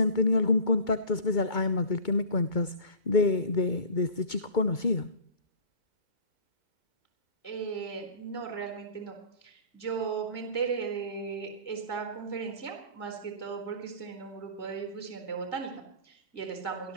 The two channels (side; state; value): right; late; 2.2 ms